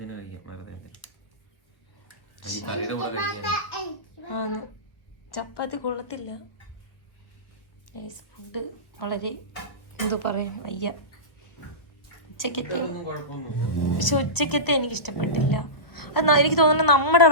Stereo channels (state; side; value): late; right; 1.4 ms